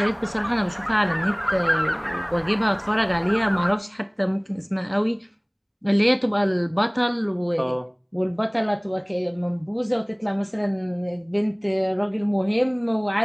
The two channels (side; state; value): both; identical; correlation 1.00